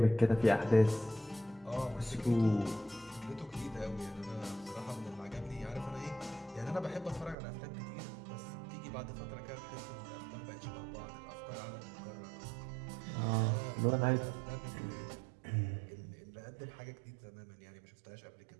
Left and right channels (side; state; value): left; drops out; at 7.4 s